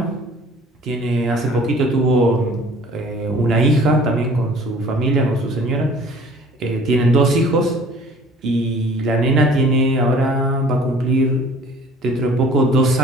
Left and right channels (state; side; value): normal; both; correlation 0.50